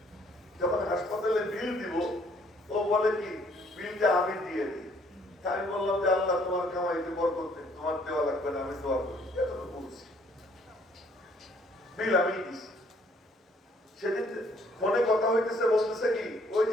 যখন হাসপাতালে বিল দিব, ও বলে কি বিলটা আমি দিয়ে দিই। আমি বললাম যে আল্লাহ তোমার কামাইতে বরকত দেন, তোমার দেওয়া লাগবে না, আমি দোয়া করি, এতটুকু বলছি, বিল আমি দিছি। সেদিন ফোনে কথা হইতেছে, বলতেছে কি ওই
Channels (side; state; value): both; normal; correlation 0.63